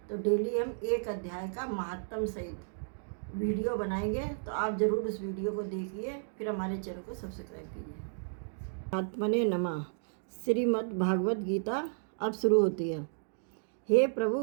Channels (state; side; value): silent; left; digital silence